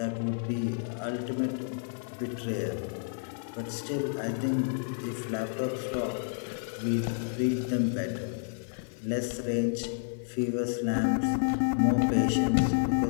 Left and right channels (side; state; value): right; silent; 58 dB below the other